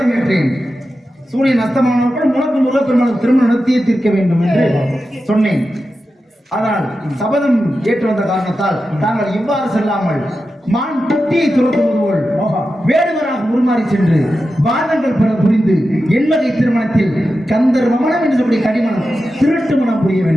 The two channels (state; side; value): normal; both; correlation 0.91